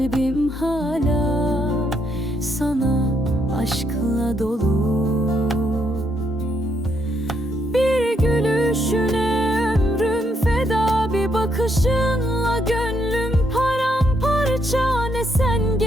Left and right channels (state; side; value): normal; both; correlation 0.75